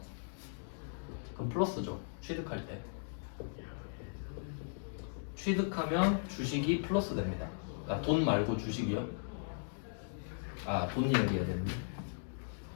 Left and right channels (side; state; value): right; silent; digital silence